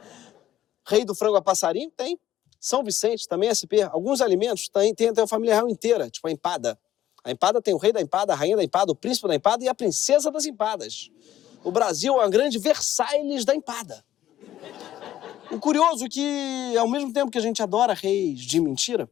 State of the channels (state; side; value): quieter; right; 12.5 dB